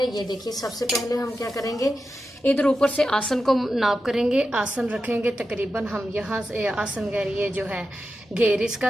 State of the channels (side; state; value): both; normal; correlation 0.90